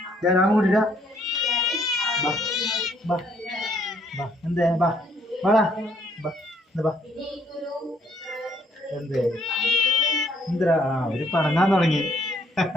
ഞാൻ കൂട്ടിട്ട എന്തേ ബാ വാടാ ബാ എന്തേ എന്തിനാ? അവര് പണങ്ങാൻ തുടങ്ങി.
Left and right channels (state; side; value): normal; both; correlation 0.66